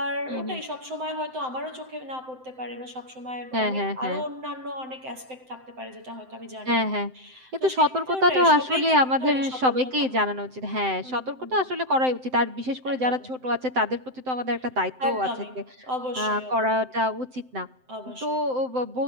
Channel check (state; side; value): late; left; 7.8 ms